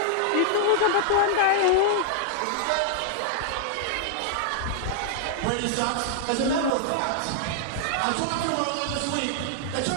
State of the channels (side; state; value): both; different; correlation -0.01